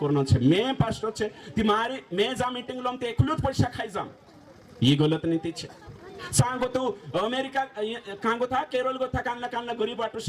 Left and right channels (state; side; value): identical; both; correlation 1.00